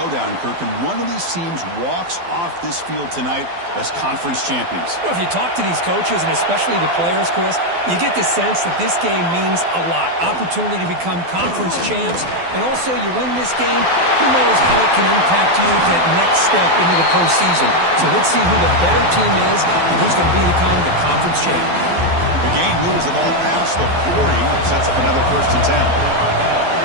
Kirk, and one of these teams walks off this field tonight as conference champions. Well, if you talk to these coaches, and especially the players, Chris, you get the sense that this game means a lot. Opportunity to become conference champs, and also you win this game, who knows how it can impact you at that next step into the postseason. So let's see who the better team is and who's going to become the conference champ. The game moves the ball past the 40, sets up another 1st and 10.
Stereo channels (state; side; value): late; left; 12 ms